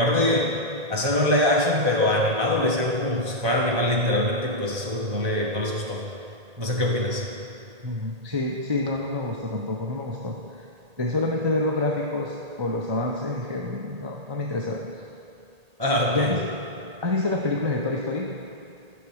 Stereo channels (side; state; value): left; late; 1.8 ms